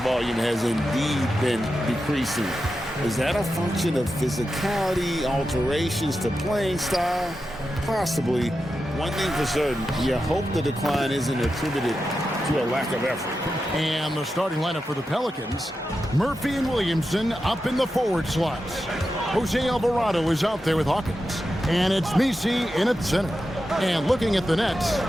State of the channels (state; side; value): normal; both; correlation 0.90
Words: has indeed been decreasing. Is that a function of physicality, alterations to playing style? Possibly. One thing for certain, you hope the decline isn't attributed to a lack of effort. And the starting lineup for the Pelicans, Murphy and Williamson up in the forward slots. Jose Alvarado is out there with Hawkins. And it's Misi in at center. And looking at the Nets,